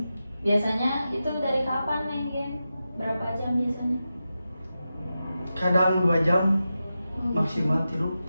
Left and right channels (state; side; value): inverted; both; correlation -0.91